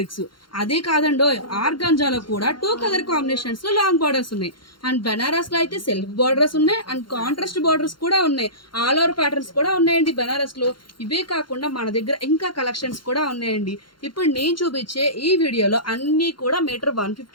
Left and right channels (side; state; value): right; late; 0.72 ms